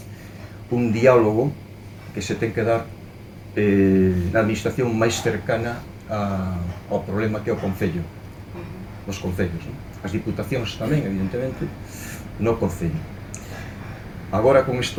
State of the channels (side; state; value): both; identical; correlation 1.00